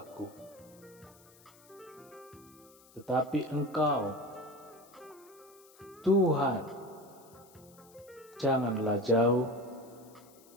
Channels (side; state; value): left; noise; hiss, 25 dB below the sound